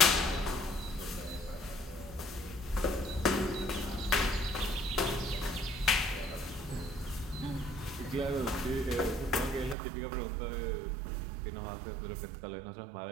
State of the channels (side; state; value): left; drops out; at 9.8 s